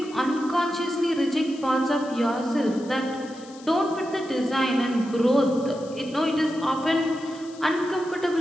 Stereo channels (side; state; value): left; noise; hiss, 22 dB below the sound